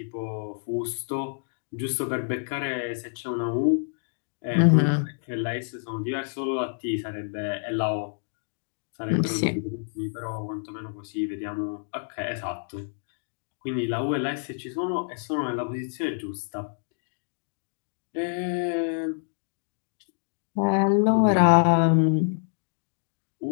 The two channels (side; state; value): right; silent; digital silence